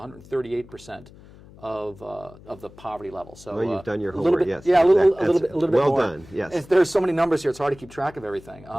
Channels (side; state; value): left; noise; hum, 22 dB below the sound